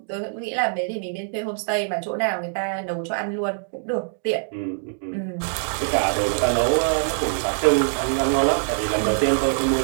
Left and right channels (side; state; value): left; silent; digital silence